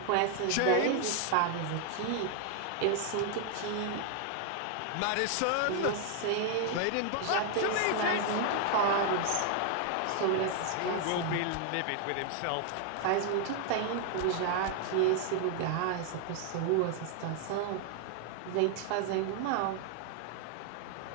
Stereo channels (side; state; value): both; different; correlation 0.00